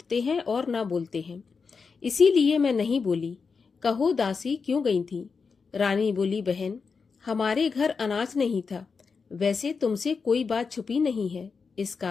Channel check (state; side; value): quieter; right; 5.2 dB